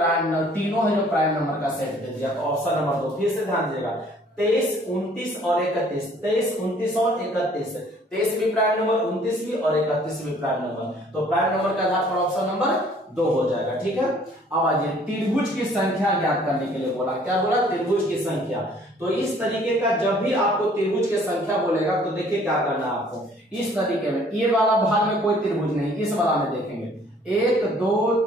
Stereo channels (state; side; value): normal; both; correlation 0.57